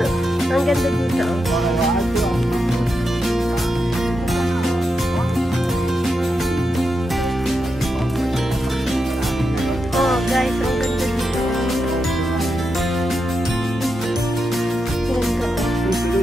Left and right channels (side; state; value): both; normal; correlation 0.86